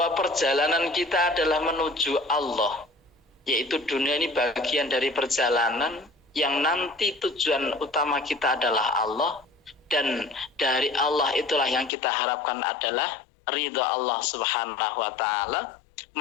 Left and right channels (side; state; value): right; drops out; at 11.9 s